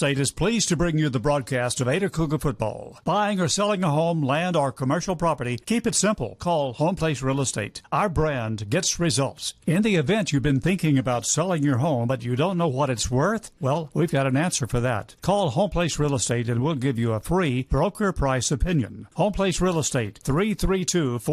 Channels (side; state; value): both; identical; correlation 1.00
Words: is pleased to bring you the broadcast of Ada Cougar football. Buying or selling a home, land, or commercial property, keep it simple. Call Home Place Real Estate. Our brand gets results. In the event you've been thinking about selling your home, but you don't know what it's worth, well, we've got an answer for that. Call Home Place Real Estate and we'll give you a free broker price opinion. Home Place Real Estate,